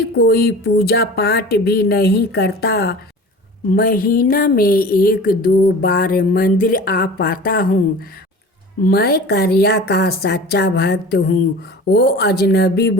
कोई पूजा पाठ भी नहीं करता। महीना में 1-2 बार मंदिर आ पाता हूँ। मैं करिया का सच्चा भक्त हूँ। वो अजनबी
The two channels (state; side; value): normal; both; correlation 0.38